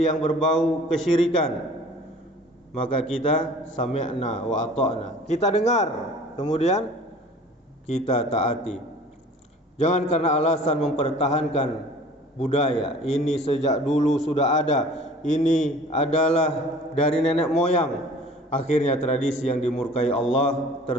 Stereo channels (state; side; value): normal; both; correlation 0.47